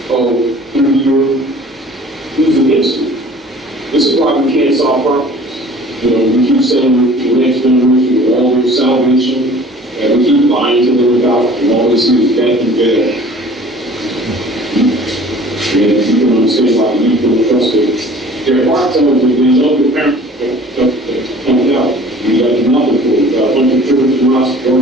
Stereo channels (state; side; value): normal; both; correlation 0.48